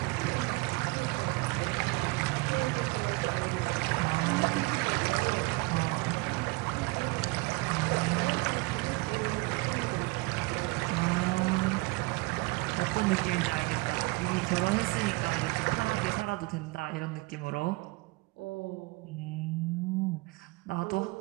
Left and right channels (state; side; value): quieter; left; 24.8 dB